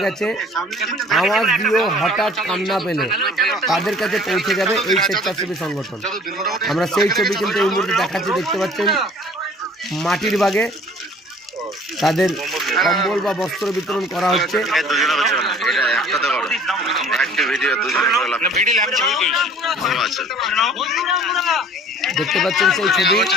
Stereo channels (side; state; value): both; normal; correlation 0.51